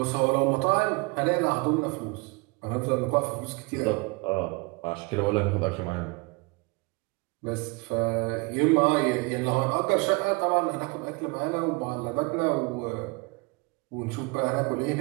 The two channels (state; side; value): quieter; left; 27.3 dB